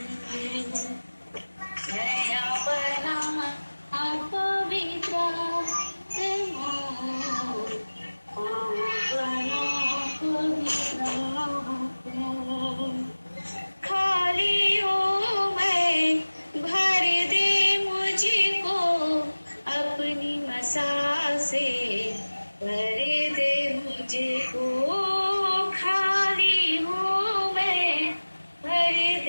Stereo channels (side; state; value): both; inverted; correlation -1.00